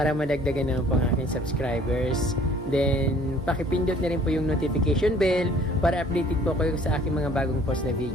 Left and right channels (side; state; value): both; normal; correlation 0.55